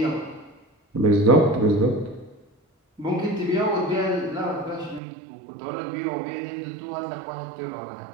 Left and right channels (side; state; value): left; drops out; at 5.0 s